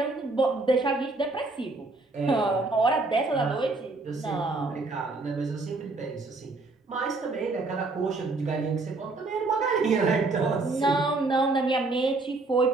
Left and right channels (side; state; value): left; quieter; 3.4 dB